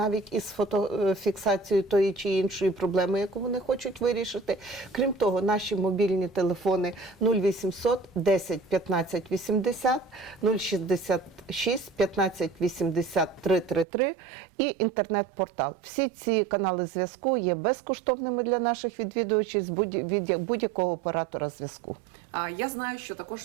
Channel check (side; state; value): left; drops out; at 13.9 s